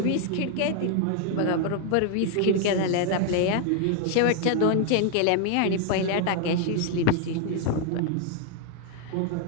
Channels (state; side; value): different; both; correlation 0.00